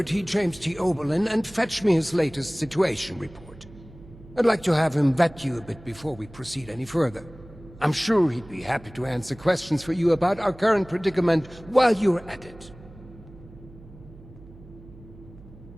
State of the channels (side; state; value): right; noise; hum, 20 dB below the sound